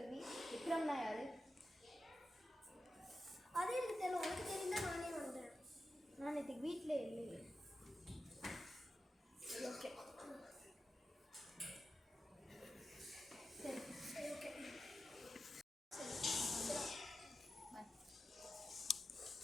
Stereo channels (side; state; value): both; normal; correlation 0.91